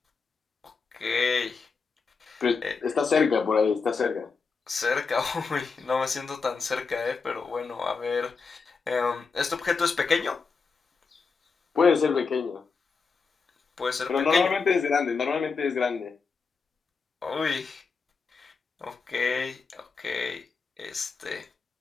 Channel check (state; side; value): quieter; right; 4.9 dB